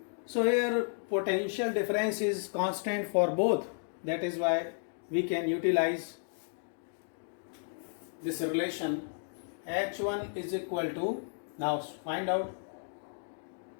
So here potential difference is constant for both. That is why we can utilize this relation. H1 is equal to, now find out.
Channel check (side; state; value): right; silent; digital silence